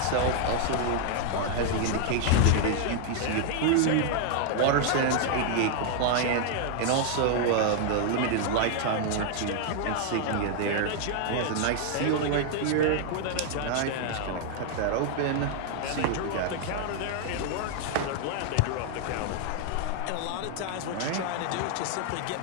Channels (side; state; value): both; different; correlation 0.00